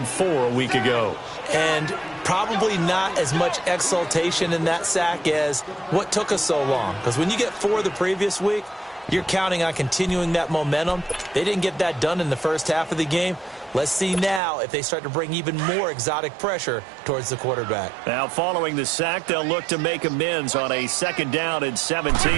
4 a week ago. And probably not as much exultation in that sack as what took us so long. Because when you get 4 the previous week, you're counting on continuing that momentum. They didn't get that done in the first half of the game. Let's see now if they start to bring even more exotic pressure towards the quarterback. Now, following the sack, they'll look to make amends on a 2nd down and 17.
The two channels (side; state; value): left; drops out; at 14.4 s